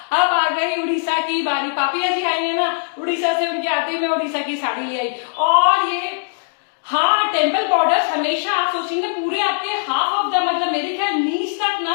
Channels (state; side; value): silent; right; digital silence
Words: अब आ गई उड़ीसा की बारी, पापिया जी आई है ना उड़ीसा से, उनके आते मैं उड़ीसा की साड़ी ले आई। और ये हाँ टेम्पल बॉर्डर हमेशा आप सोचेंगे पूरे आपके हाफ ऑफ द मतलब मेरे ख्याल नीच तक